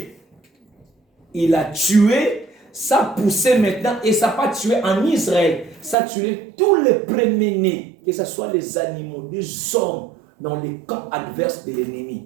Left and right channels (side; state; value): left; drops out; at 6.0 s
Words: Il a tué, ça a poussé maintenant, et ça n'a pas tué en Israël, ça a tué tous les premiers-nés, que ce soit les animaux, des hommes, dans les camps adverses de